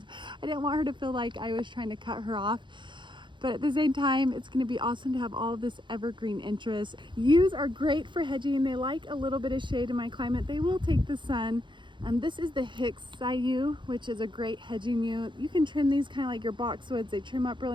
I didn't want her to feel like I was trying to cut her off. But at the same time, it's gonna be awesome to have all of this evergreen interest. Yews are great for hedging. They like a little bit of shade in my climate. They will take the sun. This is the Hicksii yew, which is a great hedging yew. You can trim these kind of like your boxwoods. They trim up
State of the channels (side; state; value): left; late; 0.23 ms